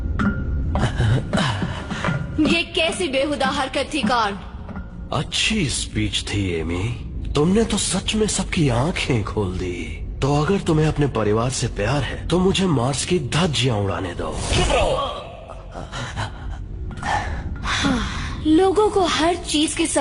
ये कैसी बेहुदा हरकत थी कार्ल? अच्छी स्पीच थी एमी, तुमने तो सच में सबकी आंखें खोल दी। तो अगर तुम्हें अपने परिवार से प्यार है तो मुझे मार्स की धज्जियां उड़ाने दो। लोगों को हर चीज की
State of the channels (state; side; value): identical; both; correlation 1.00